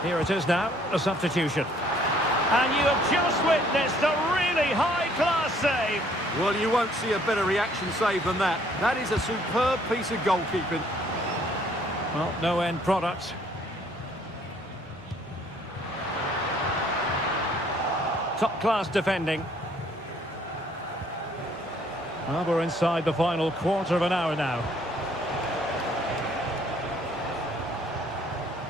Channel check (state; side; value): normal; both; correlation 0.62